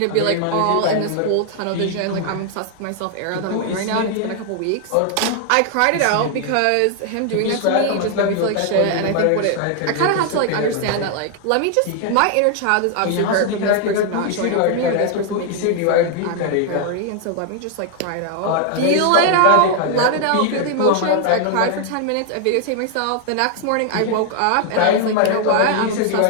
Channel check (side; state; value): both; different; correlation 0.00